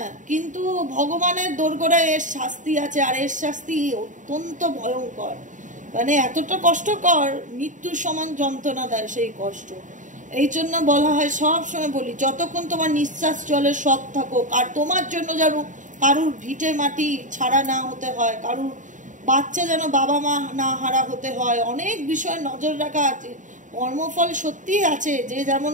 কিন্তু ভগবানের দোরগোড়ায় এর শাস্তি আছে, আর এর শাস্তি অত্যন্ত ভয়ঙ্কর, মানে এতটা কষ্টকর, মৃত্যুর সমান যন্ত্রণা দেয় সেই কষ্ট। এই জন্য বলা হয়, সব সময় বলি, যতক্ষণ তোমার নিঃশ্বাস চলে সৎ থাকো, আর তোমার জন্য যেন কারুর ভিটে মাটি ছাড়া না হতে হয়, কারুর বাচ্চা যেন বাবা মা না হারা হতে হয়, অনেক বিষয় নজর রাখা আছে। কর্মফল সত্যি আছে, যে যেমন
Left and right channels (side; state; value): left; late; 0.37 ms